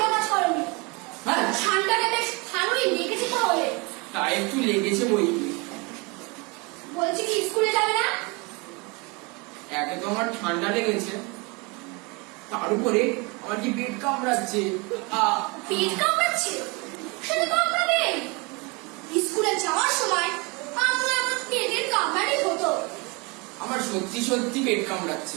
কাজ করোনি। হ্যাঁ, ঠান্ডাটা বেশ ভালোই লেগেছে তাহলে। তা একটু লেগেছে বই কি। বলছি কি স্কুলে যাবে না? একে তো আমার ঠান্ডা লেগেছে, তার উপরে আমার কি পেট কামড়াচ্ছে। পেট কামড়াচ্ছে? সেটা কামড়াবে। স্কুলে যাওয়ার সময় আপনার আমার পেটের কামড়ানি হতো। আমার সত্যি সত্যি পেট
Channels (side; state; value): left; quieter; 28.5 dB